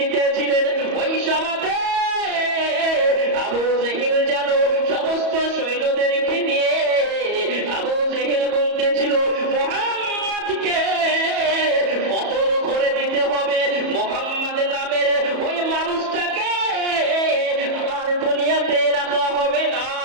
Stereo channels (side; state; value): left; late; 34 ms